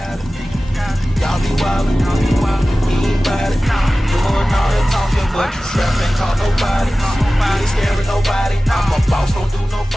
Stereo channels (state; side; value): normal; both; correlation 0.96